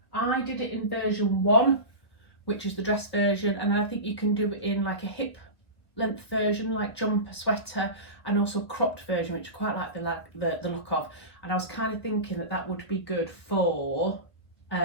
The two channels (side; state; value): right; late; 1.4 ms